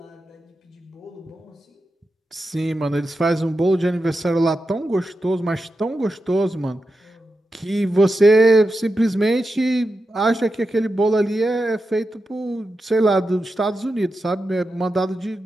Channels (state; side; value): normal; both; correlation 0.90